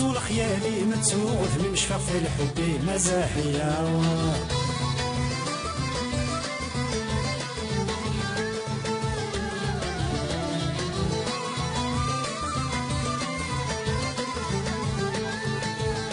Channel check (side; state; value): both; identical; correlation 1.00